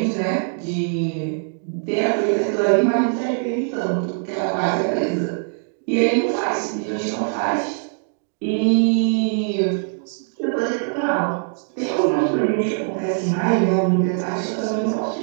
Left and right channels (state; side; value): silent; left; 64 dB below the other